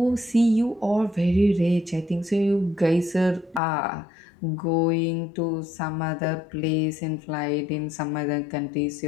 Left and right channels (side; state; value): right; drops out; at 3.6 s